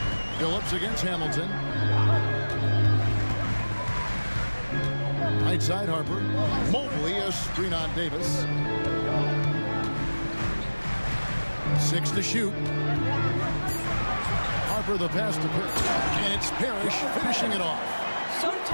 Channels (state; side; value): inverted; both; correlation -1.00